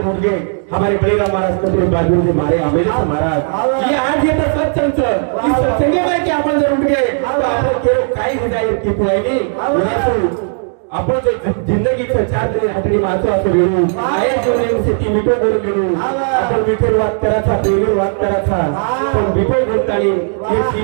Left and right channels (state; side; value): silent; left; 60 dB below the other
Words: मुलगे हमारे बळीराम महाराज कपडे बाजू जे मारे आंबेडकर महाराज ये आज येतं सत्संग इस सत्संगे में कि आपण जर उठ गए तो आपण केवळ काही हो जाईल की पुआईने आपण जो जिंदगी चार जणे हातडी मारतो असं वेळू आहे जीवनासाठी मिठो बोल मिळू आपण मिठोर वाद करायचा प्रेमीर वाद करायचा पण मिठो बोलतानी हे